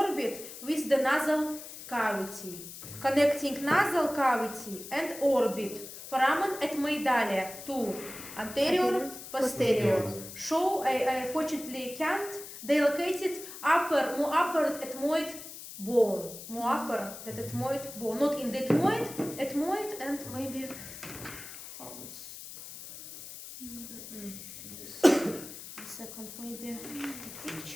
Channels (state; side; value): noise; left; hiss, 12 dB below the sound